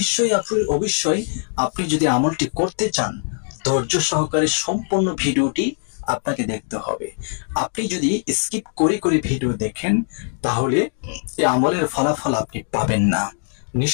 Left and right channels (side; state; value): right; silent; 59 dB below the other